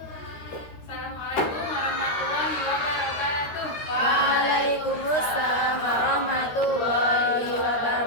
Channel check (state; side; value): late; right; 13 ms